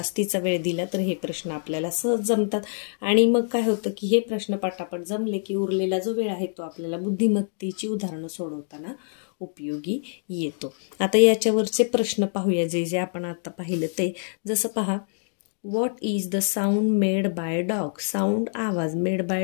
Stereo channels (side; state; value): right; silent; digital silence